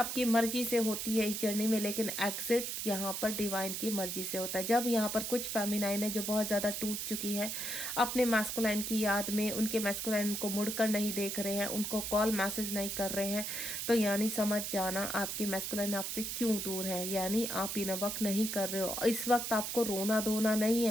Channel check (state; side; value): noise; right; hiss, 3 dB below the sound